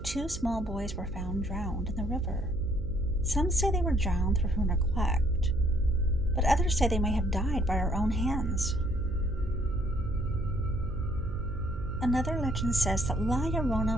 2 small boys were found drowned in the river. Some say they were drowned through her neglect, but others say they may have died by her own hands. Another legend says that La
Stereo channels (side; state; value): right; noise; hum, 11 dB below the sound